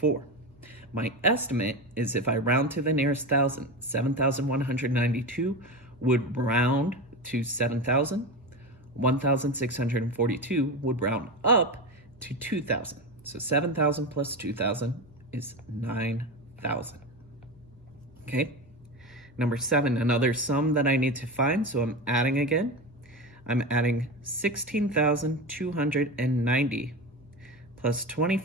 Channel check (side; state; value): both; normal; correlation 0.21